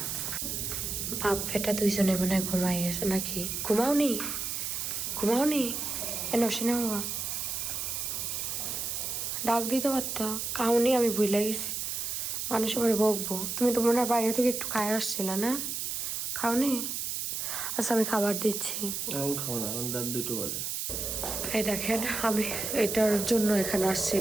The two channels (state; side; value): noise; right; hiss, 3 dB below the sound